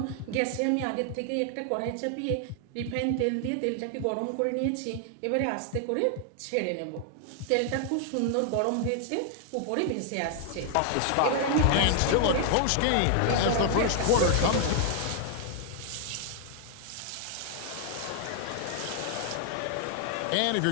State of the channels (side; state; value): both; different; correlation 0.00